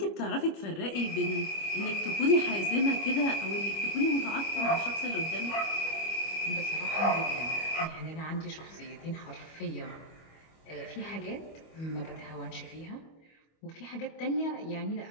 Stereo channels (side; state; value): right; late; 25 ms